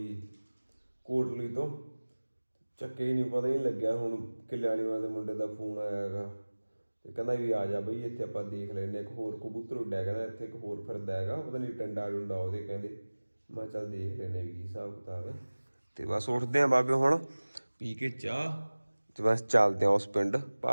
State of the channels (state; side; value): inverted; both; correlation -1.00